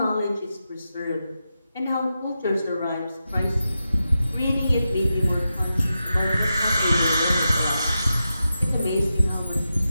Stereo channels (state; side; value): inverted; both; correlation -0.90